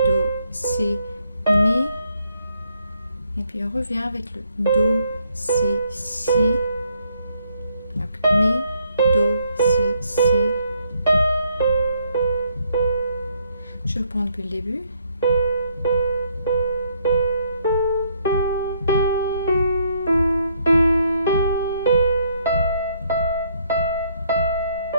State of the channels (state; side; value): inverted; both; correlation -0.70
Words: Si, Mi. Et puis on revient avec le Do, Si, Si. Donc Mi, Do, Si, Si. Je reprends depuis le début.